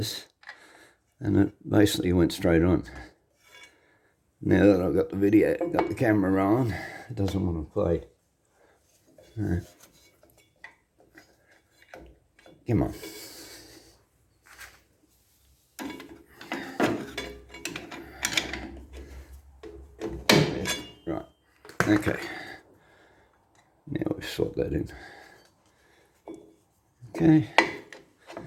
and it basically went straight on. Now that I've got the camera on, it doesn't want to play. Come on. Right. Okay. Now we've swapped that in. Okay.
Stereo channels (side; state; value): both; identical; correlation 1.00